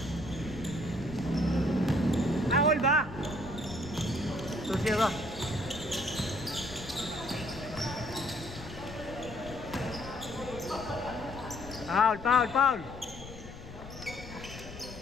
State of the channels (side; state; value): left; noise; rumble, 13 dB below the sound